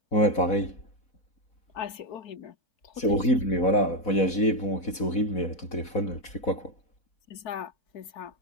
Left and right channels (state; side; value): late; right; 4.1 ms